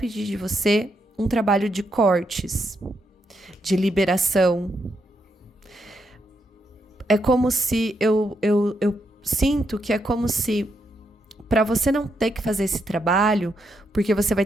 de você um trabalho de cortes, de liberação. É como se, eu sinto que é como se, para você não ter que fazer esse trabalho, porque você vai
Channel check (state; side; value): normal; both; correlation 0.80